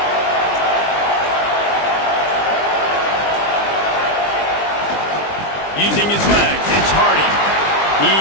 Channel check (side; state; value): right; late; 20 ms